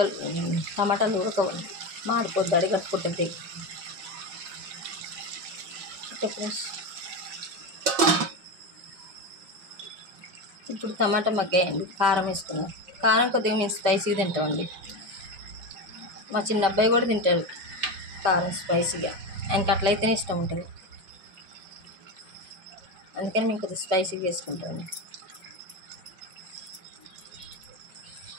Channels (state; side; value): late; left; 5.1 ms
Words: టమాటాలు ఉడకవండి, మాడిపోద్ది, అడిగట్టుకుంటుంది. ఇప్పుడు టమాటా మగ్గాయండి. కారం వేసుకున్నాం. కారం కొద్దిగా మేము స్పైసీగా తింటామండి. మా చిన్న అబ్బాయి కూడా తింటాడు కారం స్పైసీగా. ఆయనకి అట్లయితేనే ఇష్టం ఉంటుంది. అందుకని మేము కొద్దిగా స్పైసీగా వేసుకుంటామండి.